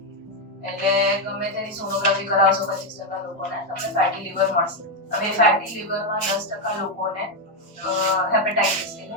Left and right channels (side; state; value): both; normal; correlation 0.04